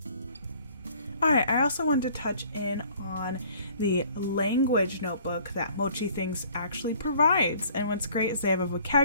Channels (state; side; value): inverted; both; correlation -0.55